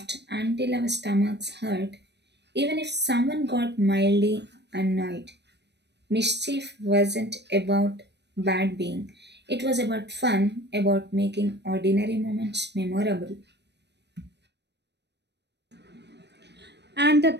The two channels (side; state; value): left; late; 0.50 ms